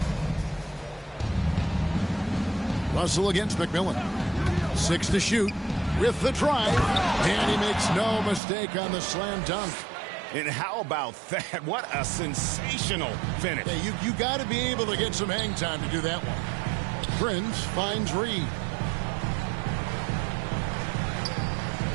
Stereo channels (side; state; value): left; drops out; at 8.4 s